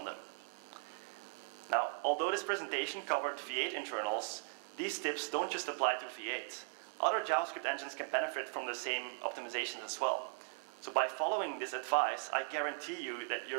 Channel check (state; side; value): silent; left; 52 dB below the other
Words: them. Now, although this presentation covered V8 internals, these tips don't just apply to V8. Other JavaScript engines can benefit from the same optimizations as well. So by following this advice, I guarantee you that